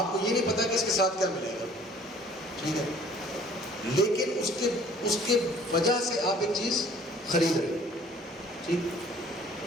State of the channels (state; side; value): normal; both; correlation 0.53